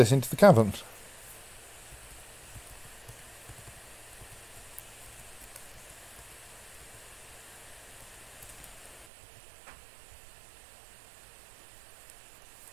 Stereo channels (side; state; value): left; drops out; at 9.1 s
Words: into the cavern.